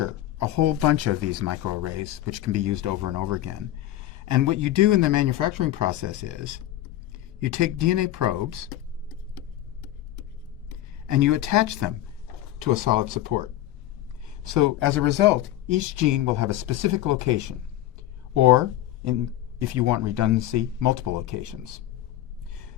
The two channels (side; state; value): right; quieter; 13.9 dB